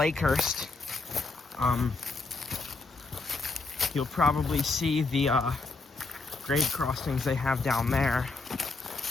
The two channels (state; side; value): quieter; right; 3.7 dB